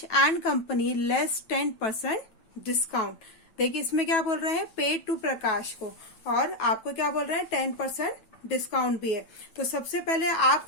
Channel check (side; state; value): right; late; 9.2 ms